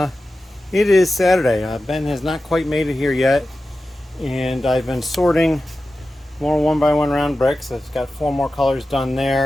It is Saturday. Ben has not quite made it here yet. And I've been sorting more 1x1 round bricks. I've got 4 more colors done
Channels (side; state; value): both; normal; correlation 0.93